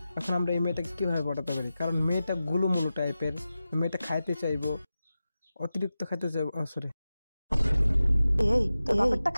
এখন আমরা এই মেয়েটাকে কীভাবে পটাতে পারি? কারণ মেয়েটা গুলুমুলু টাইপের, মেয়েটা খাইতে চাইবো, অতিরিক্ত খাইতে চাইবো। সরি,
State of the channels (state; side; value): inverted; both; correlation -0.94